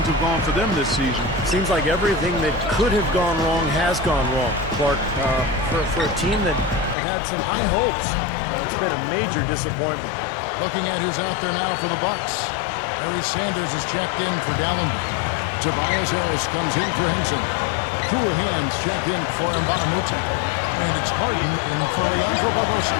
have gone for them this season. Seems like everything that could have gone wrong has gone wrong, Clark. For a team that had some high hopes, it's been a major disappointment. Looking at who's out there now for the Bucks. Larry Sanders is checked in for Dallenberg. Tobias Harris comes in for Henson. Cool hands checked in for Mba'amute. And it's Harden in for Leandro Barbosa.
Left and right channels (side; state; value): right; drops out; at 7.0 s